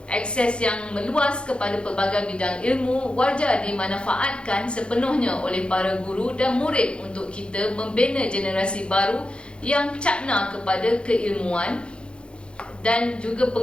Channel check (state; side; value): late; right; 0.056 ms